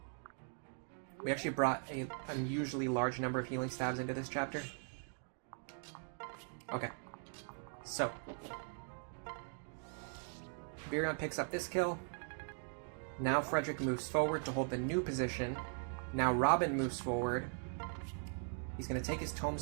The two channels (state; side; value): silent; left; 51 dB below the other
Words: We actually brought an unusually large number of healing stabs into this chapter. Okay. So. Virion picks up this kill. Now Frederick moves forward to hold the new position. Now Robin moves forward. He's going to take his